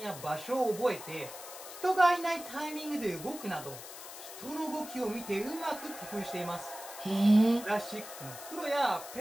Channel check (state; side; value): noise; left; hiss, 13 dB below the sound